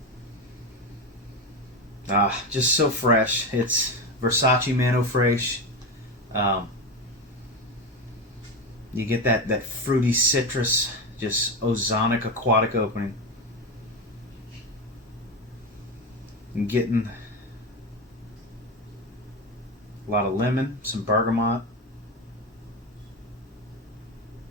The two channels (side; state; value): both; normal; correlation 0.18